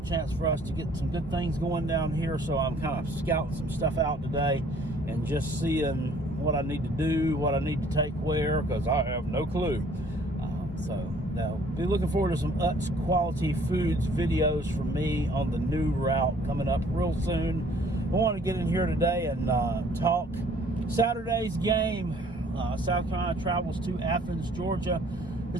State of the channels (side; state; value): both; normal; correlation 0.57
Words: chance for us to get some good things going down here, so I'm kind of scouting some stuff out today and just seeing what I need to do, what I need to take where, because I have no clue. So now, be looking forward to some Utz Quality Foods videos from me on the new route coming up real soon. I want to get in here today and talk Saturday's game. South Carolina travels to Athens, Georgia,